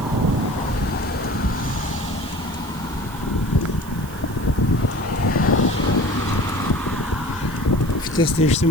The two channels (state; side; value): noise; right; hiss, 18 dB below the sound